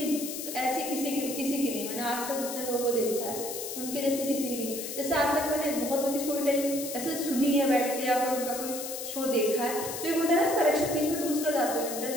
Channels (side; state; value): left; noise; hiss, 7 dB below the sound